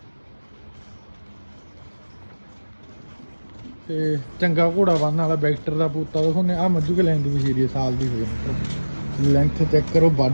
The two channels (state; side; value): inverted; both; correlation -1.00